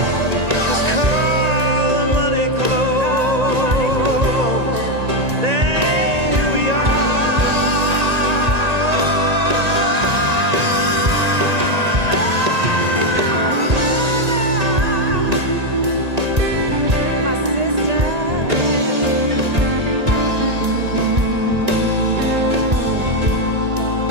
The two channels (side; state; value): left; late; 1.9 ms